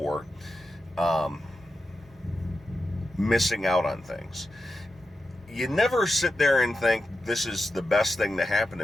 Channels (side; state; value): both; normal; correlation 0.89